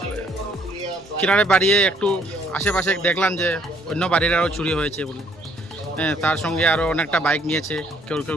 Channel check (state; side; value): normal; both; correlation 0.65